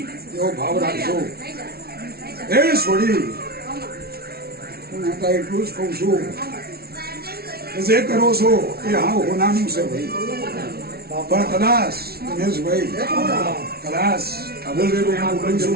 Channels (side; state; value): left; late; 0.45 ms